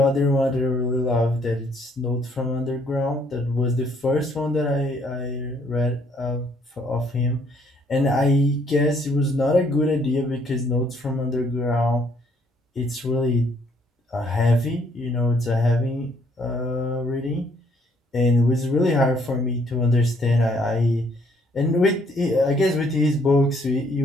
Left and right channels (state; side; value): normal; both; correlation 0.66